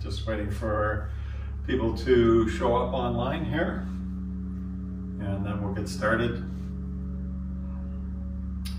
Just waiting for people to show up online here, and then we'll get started.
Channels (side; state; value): both; identical; correlation 1.00